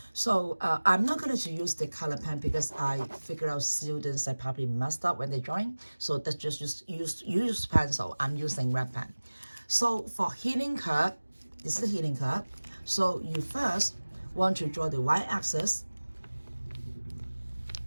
So I'm not going to use the color pen because I figure out students that probably messed up when they drawing. So that's just use pencil. I'm using red pen. So for heating curve, this is the heating curve. So you first want to draw the y-axis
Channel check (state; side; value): inverted; both; correlation -1.00